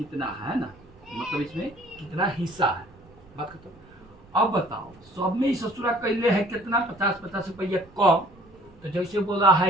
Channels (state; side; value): noise; right; rumble, 26 dB below the sound